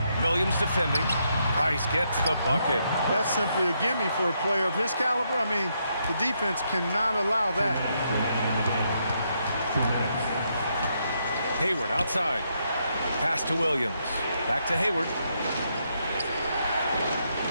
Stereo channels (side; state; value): both; inverted; correlation -0.78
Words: Williams defending. Price gets the bucket. That's simply a gimme for a player of his caliber. I mean, the defense cannot allow that. Hayward outside. Pass to Williams. Back to Hayward.